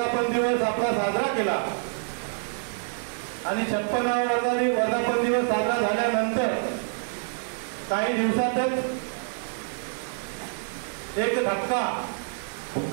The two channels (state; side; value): silent; left; 60 dB below the other